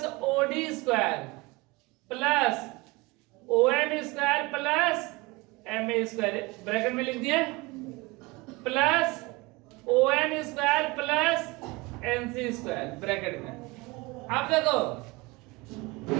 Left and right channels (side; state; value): left; quieter; 23.8 dB